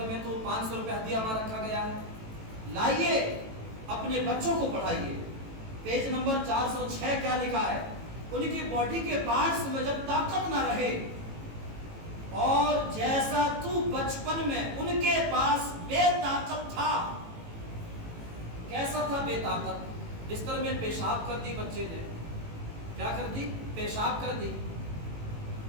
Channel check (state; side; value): late; left; 18 ms